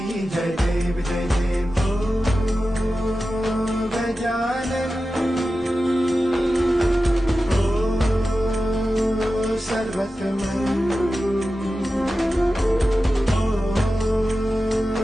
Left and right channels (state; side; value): normal; both; correlation 0.93